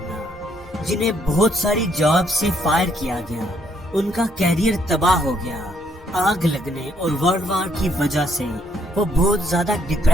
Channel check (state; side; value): normal; both; correlation 0.71